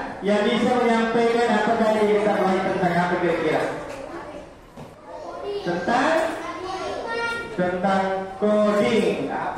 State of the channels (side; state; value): both; identical; correlation 1.00